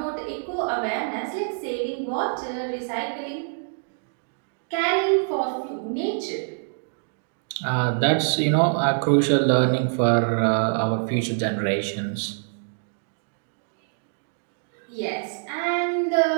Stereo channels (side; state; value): left; silent; digital silence